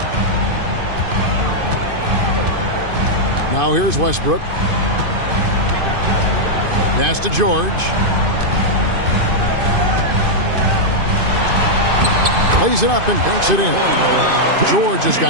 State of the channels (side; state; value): left; late; 2.5 ms